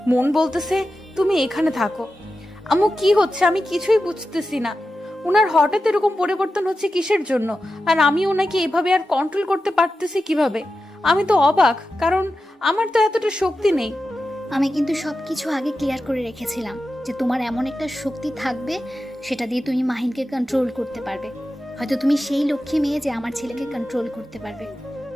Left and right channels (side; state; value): both; normal; correlation 0.91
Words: মন বলতেছে তুমি এখানে থাকো। আম্মু কি হচ্ছে আমি কিছুই বুঝতেছি না। ওনার হঠাৎ এরকম পরিবর্তন হচ্ছে কিসের জন্য? আর আমি ওনাকে এভাবে আর কন্ট্রোল করতে পারতেছি কিভাবে? আমি তো অবাক, কারণ আমার তো এতটা শক্তি নেই। আমি কিন্তু সবকিছু আগে ক্লিয়ার করে রেখেছিলাম যে তোমার এমন একটা শক্তি থাকবে সেটা দিয়ে তুমি মাহিনকে কন্ট্রোল করতে পারবে। হয়তো তুমি সেই লক্ষ্মী মেয়ে যে আমার ছেলেকে কন্ট্রোল করতে পারবে।